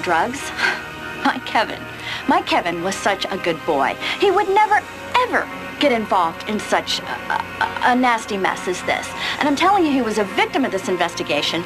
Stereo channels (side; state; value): both; identical; correlation 1.00